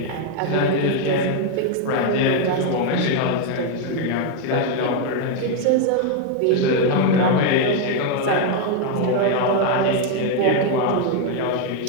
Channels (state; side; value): different; both; correlation 0.01